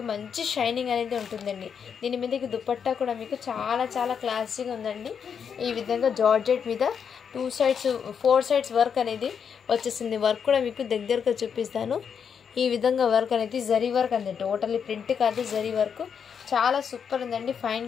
మంచి షైనింగ్ అనేది ఉంటుందండి. దీని మీదకి దుపట్టా కూడా మీకు చాలా చాలా క్లాసీగా ఉందండి. ఈ విధంగా జార్జెట్ మీద 2 sides 4 sides వర్క్ అనేది వచ్చేసింది. వర్క్ కూడా మీకు దగ్గరగా చూపిస్తాను. ఈ విధంగా వర్క్ అనేది జరీ వర్క్ అండి. టోటల్లీ ప్రింట్ కాదు, జరీ వర్క్. చాలా సూపర్ ఉందండి. Fine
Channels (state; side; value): quieter; right; 7.1 dB